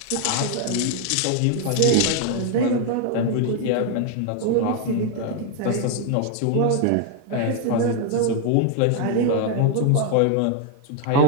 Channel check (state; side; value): different; both; correlation 0.00